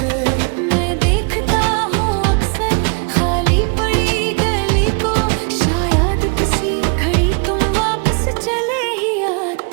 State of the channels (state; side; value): quieter; left; 37.7 dB